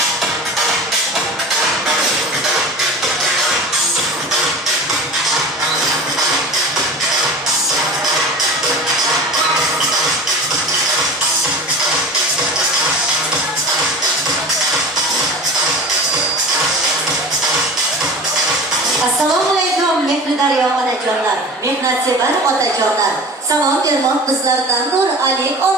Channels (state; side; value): normal; both; correlation 0.36